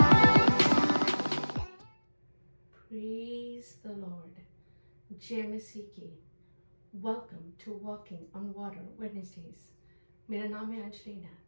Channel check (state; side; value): inverted; both; correlation -1.00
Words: the Lord. JMSC welcome to walking on water Wednesdays. मेरा नाम है अंजलि